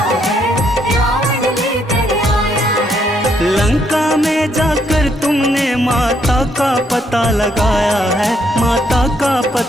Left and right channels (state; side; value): normal; both; correlation 0.73